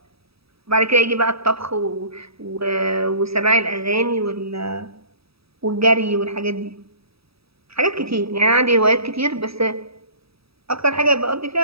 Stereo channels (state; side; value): late; left; 0.77 ms